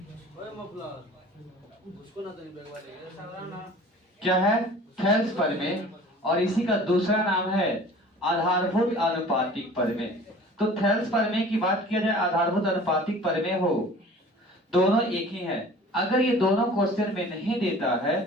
क्या है? थैल्स परिमेय। और इसी का दूसरा नाम है आधारभूत आनुपातिक परिमेय। तो थैल्स परिमेय की बात किया जाए, आधारभूत आनुपातिक परिमेय हो, दोनों एक ही है। अगर ये दोनों क्वेश्चन में नहीं देता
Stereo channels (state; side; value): normal; both; correlation 0.45